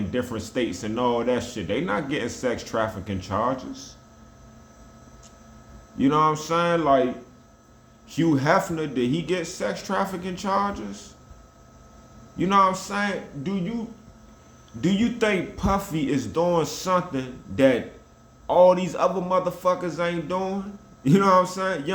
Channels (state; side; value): identical; both; correlation 1.00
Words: different states and all that shit. They not getting sex trafficking charges. You know what I'm saying? Like, Hugh Hefner, did he get sex trafficking charges? You know what I'm saying? Do you think Puffy is doing something that all these other motherfuckers ain't doing? You know what I'm saying? You